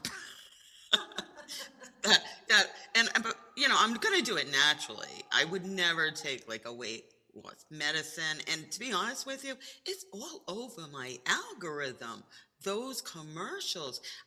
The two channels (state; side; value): identical; both; correlation 1.00